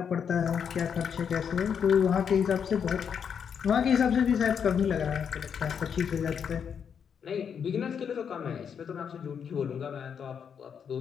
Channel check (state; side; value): quieter; right; 7.3 dB